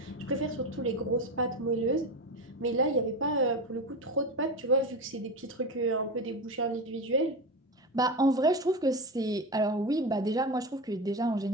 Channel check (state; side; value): normal; both; correlation 0.21